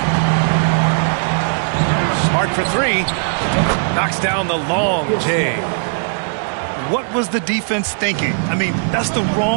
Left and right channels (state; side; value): silent; left; digital silence